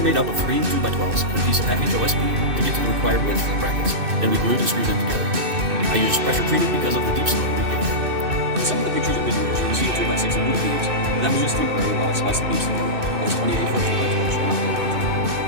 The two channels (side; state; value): left; late; 2.6 ms